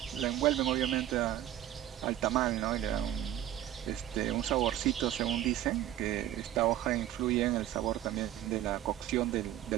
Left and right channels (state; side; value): quieter; left; 12.7 dB